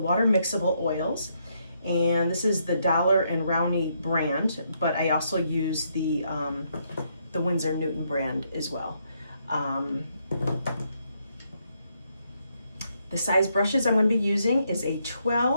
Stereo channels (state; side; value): inverted; both; correlation -0.76